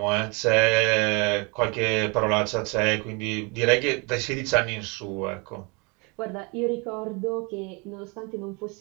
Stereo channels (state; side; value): quieter; left; 30.2 dB